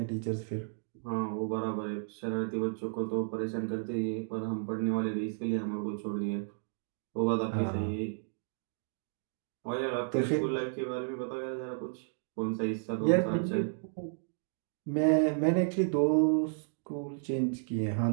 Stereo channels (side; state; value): left; silent; digital silence